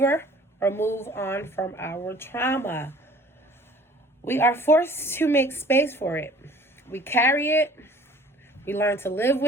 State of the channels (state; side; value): normal; both; correlation 0.51